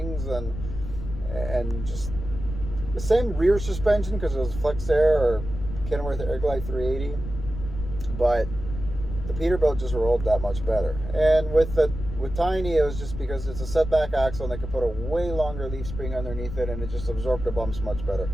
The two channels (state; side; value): noise; left; rumble, 8 dB below the sound